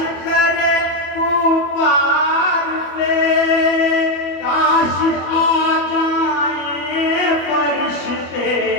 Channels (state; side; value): late; right; 25 ms